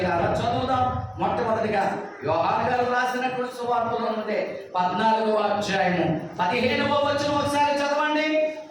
చదువుదాం. మొట్టమొదటిగా యోహాను గారు రాసినటువంటి సువార్తలో ఉండే 14వ అధ్యాయము 15వ వచనం ఒకసారి చదవండి.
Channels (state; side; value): identical; both; correlation 1.00